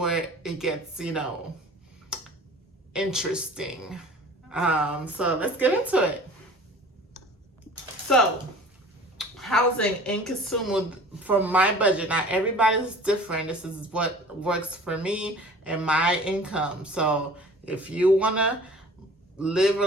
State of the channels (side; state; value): both; normal; correlation 0.45